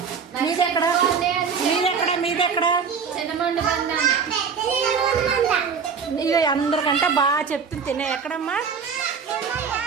మీదెక్కడ? ఇక అందరికంటే బాగా చెప్తుంది తినే. ఎక్కడమ్మా?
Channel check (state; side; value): quieter; left; 6.1 dB